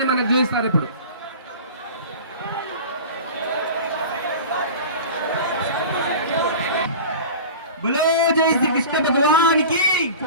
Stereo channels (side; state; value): both; inverted; correlation -0.36